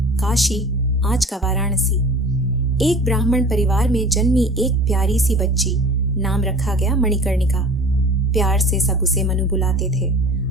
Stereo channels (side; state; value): both; normal; correlation 0.42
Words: काशी, आज का वाराणसी। एक ब्राह्मण परिवार में जन्मी एक प्यारी सी बच्ची, नाम रखा गया मणिकर्णिका। प्यार से सब उसे मनु बुलाते थे।